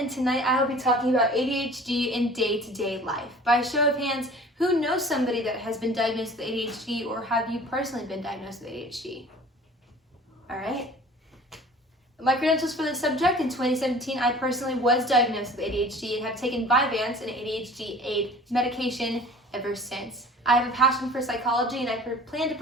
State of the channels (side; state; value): both; normal; correlation 0.45